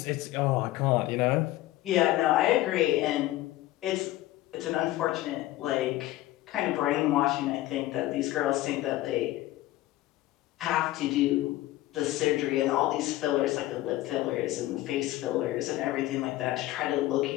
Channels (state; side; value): quieter; right; 16.3 dB